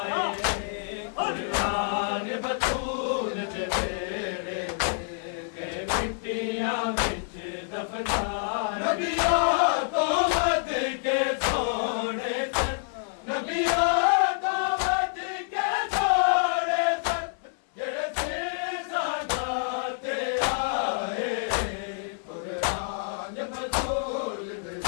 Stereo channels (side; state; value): right; silent; 60 dB below the other